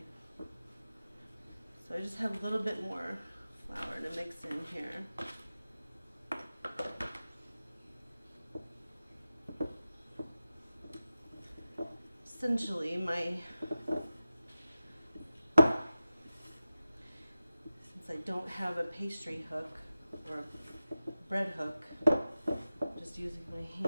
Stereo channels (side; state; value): both; inverted; correlation -0.94